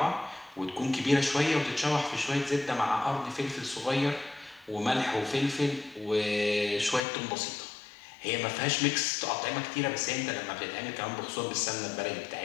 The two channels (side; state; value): right; drops out; at 7.0 s